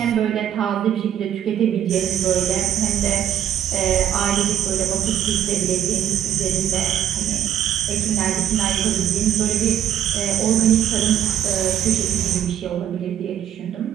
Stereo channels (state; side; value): quieter; left; 10.2 dB